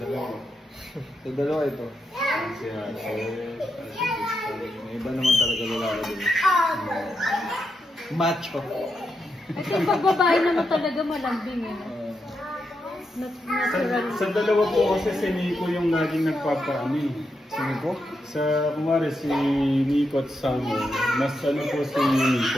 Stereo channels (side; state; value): both; normal; correlation 0.84